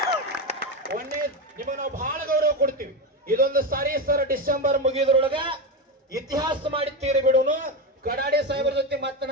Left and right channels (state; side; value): normal; both; correlation 0.14